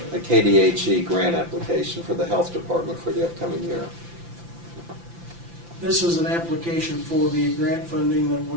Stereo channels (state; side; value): late; left; 5.9 ms